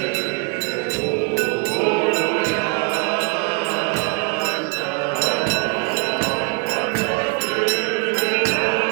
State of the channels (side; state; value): left; quieter; 32.1 dB